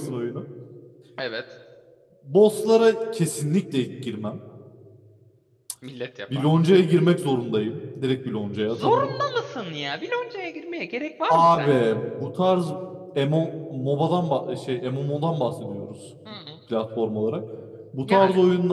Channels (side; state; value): both; identical; correlation 1.00